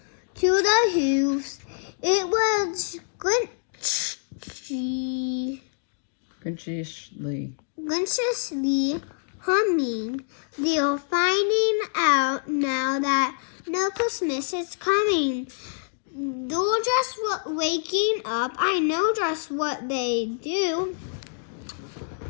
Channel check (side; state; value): right; silent; digital silence